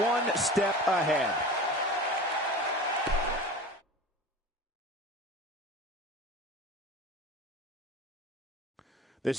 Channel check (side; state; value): both; normal; correlation 0.34